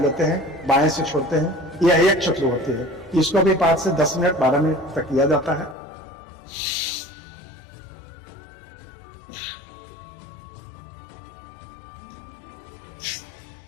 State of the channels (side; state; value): right; drops out; at 5.8 s